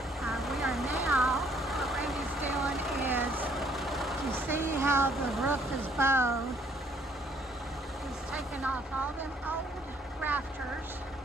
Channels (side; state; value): both; normal; correlation 0.64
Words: We are now, what Randy's doing is, you see how the roof is bowed. He's taken off all them old rafters,